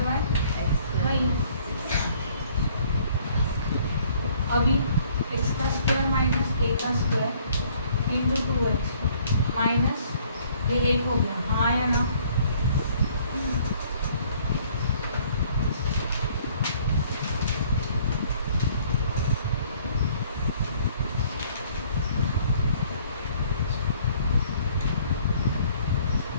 bye वही अभी x का स्क्वायर माइनस a का स्क्वायर इंटू 2x माइनस ये 1 हो गया हाँ या ना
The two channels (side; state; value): both; inverted; correlation -0.60